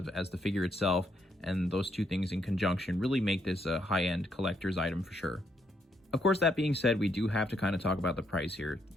as the figure itself, and those 2 things in conjunction really make this a high-end collector's item for sure. Of course, that being said, we do have to kind of talk about the price here.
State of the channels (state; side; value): normal; both; correlation 0.75